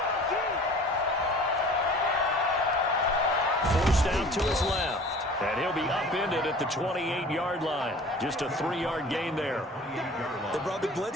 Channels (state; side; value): normal; both; correlation 0.45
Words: Forced out to his left. And he'll be upended at the 28-yard line. Just a 3-yard gain there. They brought the